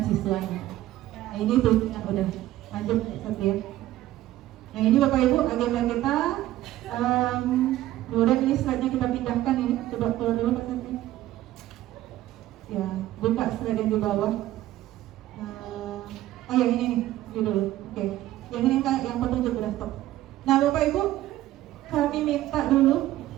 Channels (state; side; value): quieter; left; 14.7 dB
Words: siswanya. Nah, ini tuh yang udah lanjut satu ya. Nah, ini Bapak Ibu agenda kita. Kemudian ini slide-nya kita pindahkan ini, coba keluar dulu Pak Santi. Ya, buka slide yang di bawah. Oh yang ini nih, ini dulu. Oke. Yang ini yang petunjuk udah stop. Nah Bapak Ibu, kami minta dulu,